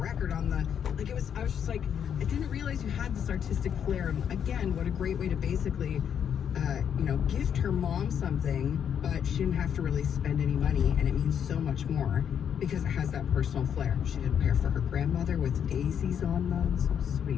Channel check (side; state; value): right; quieter; 8.3 dB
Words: record on the, like it was, I was just like, I didn't realize you had this artistic flair. And again, what a great way to basically, gift her mom something, but she didn't have to really spend any money, and it means so much more because it has that personal flair. She did a pair for her grandmother with daisies on them. So